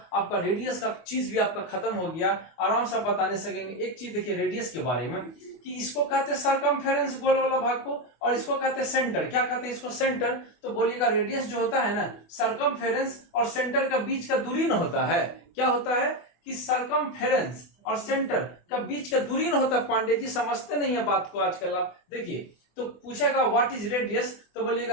आपका रेडियस का चीज भी आपका खत्म हो गया, आराम से बताने सकेंगे। एक चीज देखिए रेडियस के बारे में कि इसको कहते हैं सरकमफेरेंस, गोल वाला भाग को, और इसको कहते हैं सेंटर। क्या कहते हैं इसको, सेंटर। तो बोलिएगा रेडियस जो होता है ना, सरकमफेरेंस और सेंटर का बीच का दूरी न होता है। क्या होता है कि सरकमफेरेंस और सेंटर का बीच का दूरी न होता। पांडे जी समझते नहीं है बात को आजकल आप देखिए। तो पूछेगा व्हाट इज रेडियस, तो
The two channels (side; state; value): right; late; 24 ms